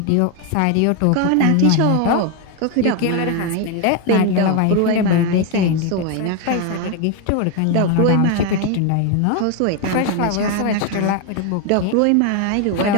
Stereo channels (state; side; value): different; both; correlation 0.01